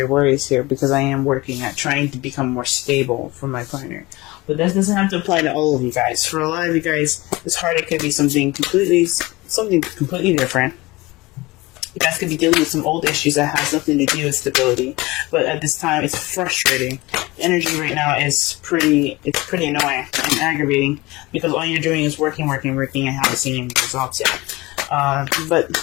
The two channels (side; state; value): right; quieter; 21.6 dB